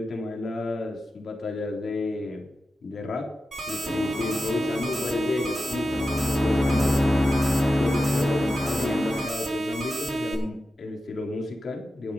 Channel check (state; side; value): normal; both; correlation 0.91